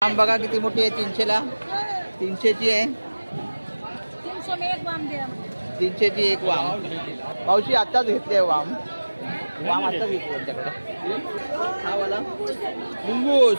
वाम बघा किती मोठी आहे. 300ला 300ची आहे. 300ची एक वाम. मावशी आत्ताच घेतली आहे वाम. वाम आता विकतो त्यांच्याकडे. हा वाला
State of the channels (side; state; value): both; inverted; correlation -1.00